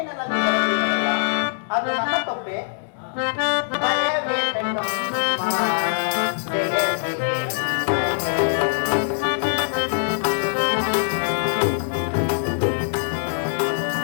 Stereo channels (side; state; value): right; silent; 64 dB below the other